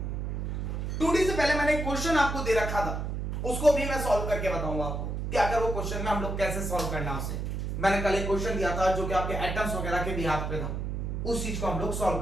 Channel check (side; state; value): right; noise; hum, 3 dB below the sound